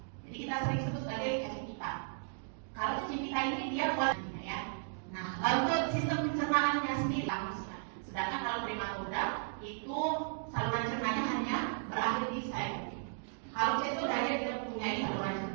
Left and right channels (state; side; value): silent; left; digital silence